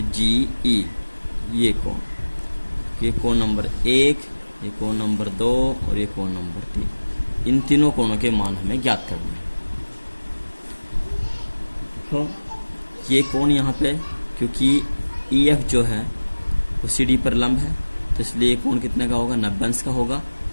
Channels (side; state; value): both; inverted; correlation -1.00